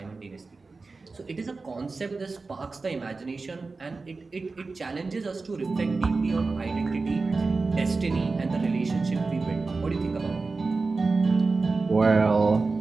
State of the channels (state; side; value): quieter; left; 3.9 dB